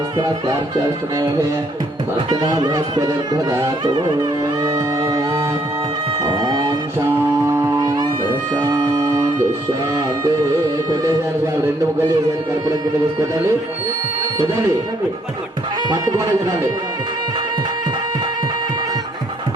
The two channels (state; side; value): normal; both; correlation 0.68